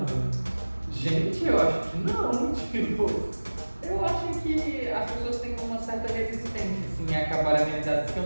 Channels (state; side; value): inverted; both; correlation -1.00